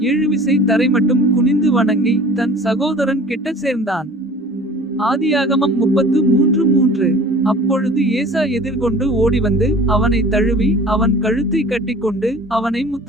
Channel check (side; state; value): both; normal; correlation 0.44